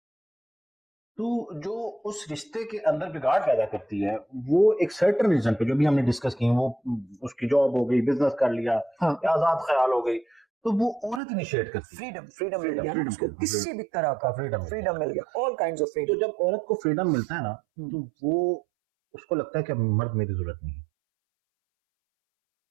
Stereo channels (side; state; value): left; drops out; at 11.2 s